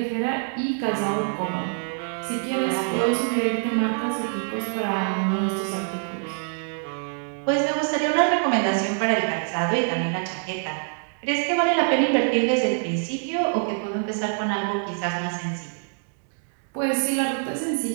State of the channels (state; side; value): silent; left; digital silence